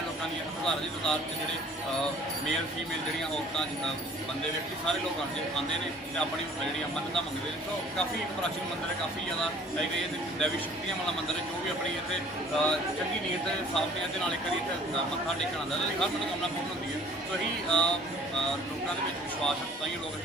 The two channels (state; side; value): normal; both; correlation 0.52